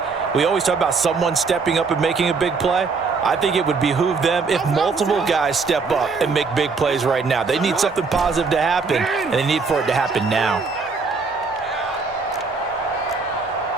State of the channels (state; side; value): quieter; left; 4.6 dB